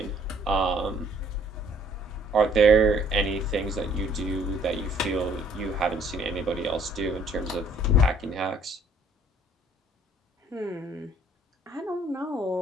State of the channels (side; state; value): both; normal; correlation 0.60